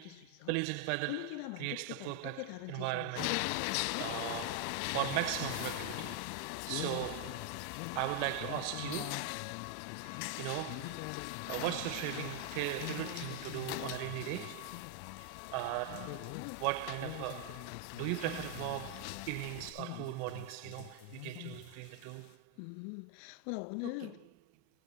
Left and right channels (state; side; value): different; both; correlation 0.00